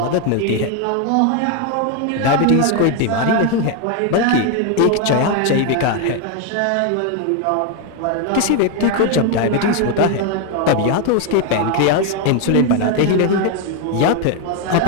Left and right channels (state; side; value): different; both; correlation 0.01